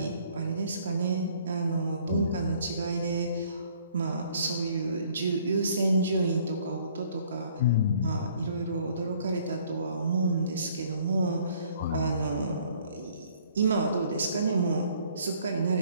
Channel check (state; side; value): inverted; both; correlation -0.60